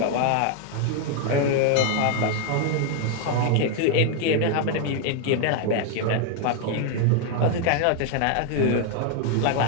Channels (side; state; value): both; different; correlation 0.01